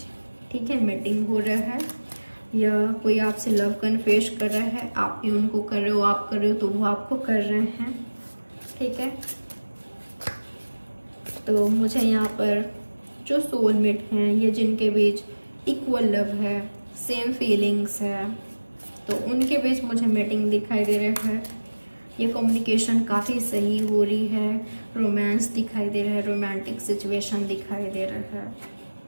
ठीक है, मीटिंग हो रहा है, या कोई आपसे लव कन्फेस कर रहा है, आप भी उनको कर रहे हो, आप कर रहे हो तो वो आपको कर रहे हैं। ठीक है, तो मुझे यहाँ पर जो सोलमेट हैं, ये जिनके बीच इक्वल लव है, सेम फीलिंग्स है, तो उनके बीच मुझे मीटिंग दिखाई दे रहा है। ये कम्युनिकेशन काफ़ी सही हो रही है, रोमांस दिखाई दे रहा है, रोमांटिक सिचुएशन दिखाई दे रहा है,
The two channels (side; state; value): both; inverted; correlation -1.00